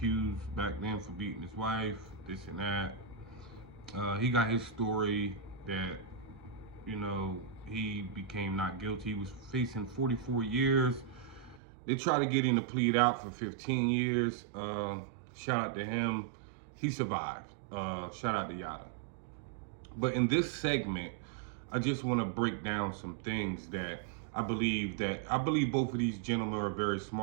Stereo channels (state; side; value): drops out; left; at 11.6 s